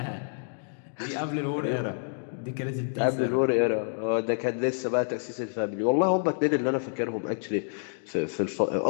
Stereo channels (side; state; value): right; silent; digital silence